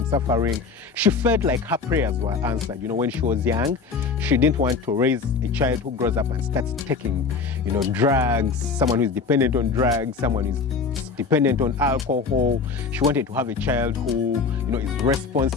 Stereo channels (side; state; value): right; quieter; 4.9 dB